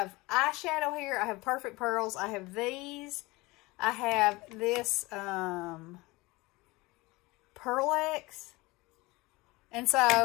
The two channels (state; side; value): quieter; right; 22.4 dB